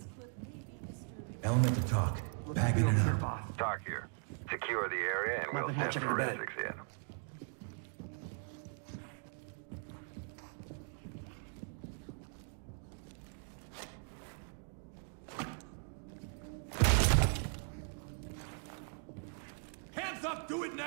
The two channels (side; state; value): left; silent; 52 dB below the other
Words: clip may be disturbing. Element to talk. Bagging it up. Talk here. Secure the area and we'll send forensics in. Hands up! Do it